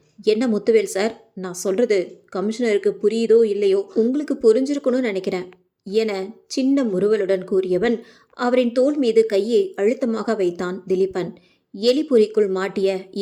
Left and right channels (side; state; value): both; identical; correlation 1.00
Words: என்ன முத்துவேல் சார், நான் சொல்கிறது கமிஷனருக்கு புரியுதோ இல்லையோ, உங்களுக்கு புரிஞ்சிருக்கணும்னு நினைக்கிறேன் என சின்ன முறுவலுடன் கூறியவன் அவரின் தோள் மீது கையை அழுத்தமாக வைத்தான் திலீபன். எலிபுரிக்குள் மாட்டிய